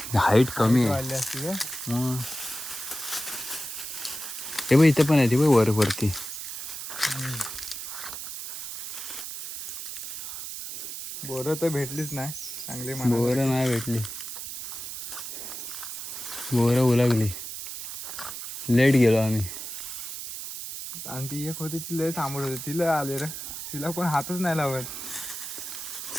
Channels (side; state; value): right; noise; hiss, 7 dB below the sound